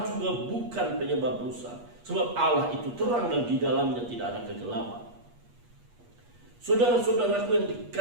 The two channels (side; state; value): left; late; 8.4 ms